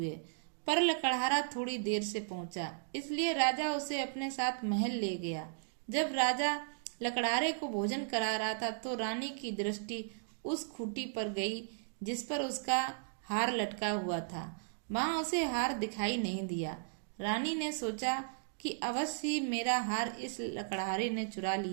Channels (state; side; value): silent; left; digital silence